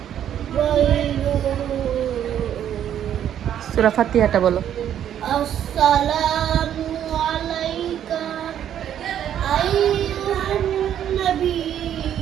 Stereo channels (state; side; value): quieter; left; 10.2 dB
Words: সূরা ফাতিহাটা বলো। আসসালামু আলাইকা আইয়ুহান